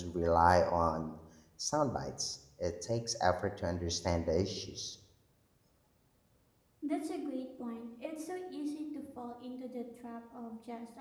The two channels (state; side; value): identical; both; correlation 1.00